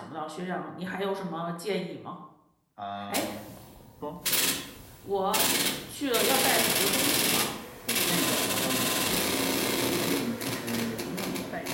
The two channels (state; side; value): identical; both; correlation 1.00